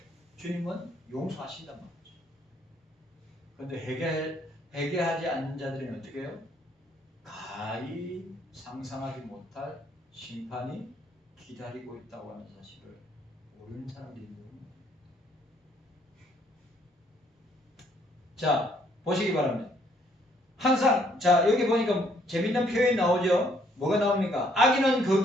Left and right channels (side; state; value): both; normal; correlation 0.67